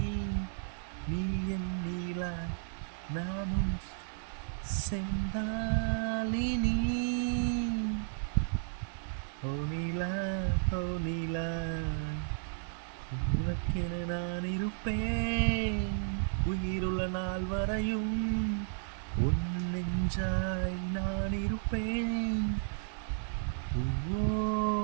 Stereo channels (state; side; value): silent; left; digital silence